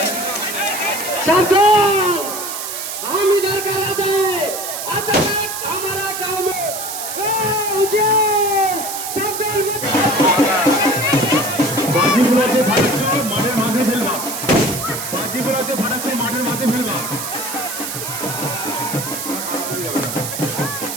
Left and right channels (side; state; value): right; noise; hiss, 6 dB below the sound